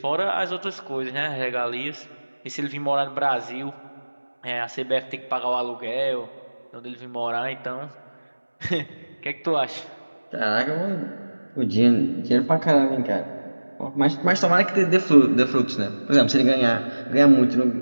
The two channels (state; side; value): inverted; both; correlation -1.00